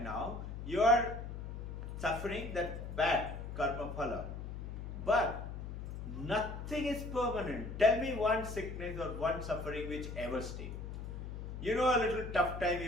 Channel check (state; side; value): noise; left; hum, 7 dB below the sound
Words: now, you are suffering that bad karma phala. But nothing is permanent. Tell me one sickness or one suffering which ever stayed. You know, a little tough time